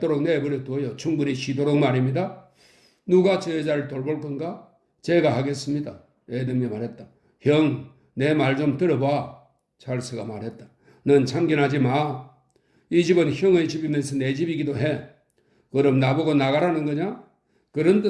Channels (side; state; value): both; identical; correlation 1.00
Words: 내버려 둬요. 충분히 쉬도록 말입니다. 누가 저 여자를 돌볼 건가? 제가 하겠습니다. 애덤이 말했다. 형, 내 말 좀 들어봐. 찰스가 말했다. 넌 참견하지 마. 이 집은 형의 집이면서 내 집이기도 해. 그럼 나보고 나가라는 거냐? 그런